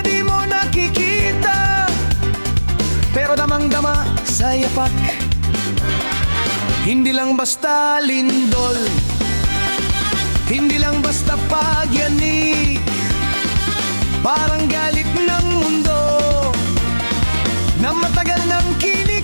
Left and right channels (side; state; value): both; inverted; correlation -1.00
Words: mo nakikita, pero damang-dama sa yapak. Hindi lang basta lindol, hindi lang basta pagyanig, parang galit ng mundo na matagal nang